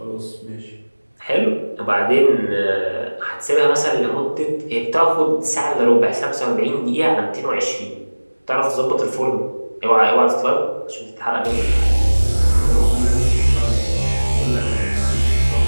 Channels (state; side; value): inverted; both; correlation -1.00